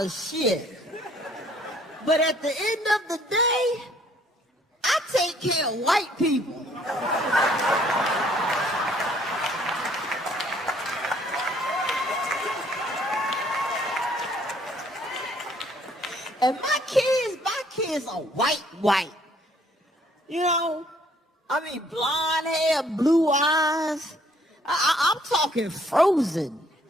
shit. But at the end of the day, I take care of white people. And my kids are white. You know, I mean, blonde hair, blue eyes. I'm talking Frozen.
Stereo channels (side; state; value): both; normal; correlation 0.63